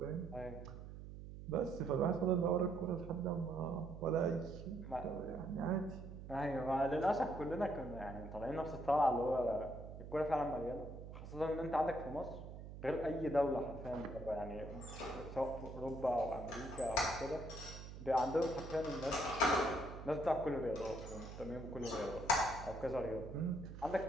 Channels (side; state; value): right; noise; hum, 11 dB below the sound